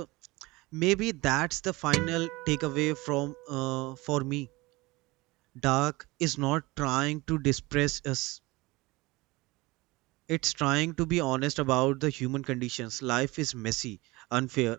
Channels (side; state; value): left; quieter; 22.1 dB